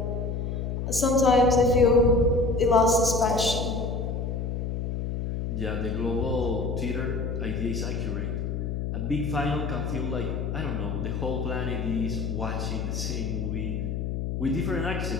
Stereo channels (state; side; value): noise; left; hum, 2 dB below the sound